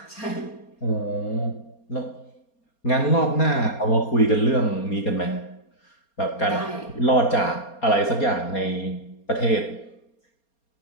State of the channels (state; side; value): late; right; 4.3 ms